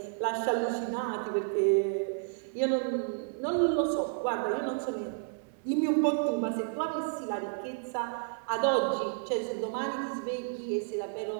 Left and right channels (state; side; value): silent; left; 57 dB below the other